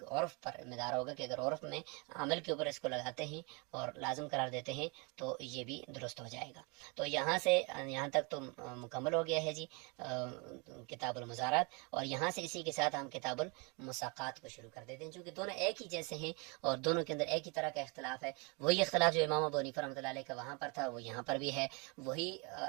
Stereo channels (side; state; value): left; quieter; 31.1 dB